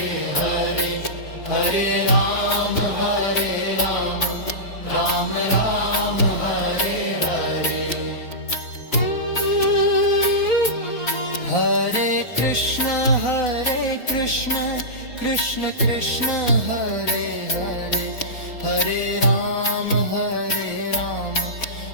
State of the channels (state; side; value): late; right; 4.0 ms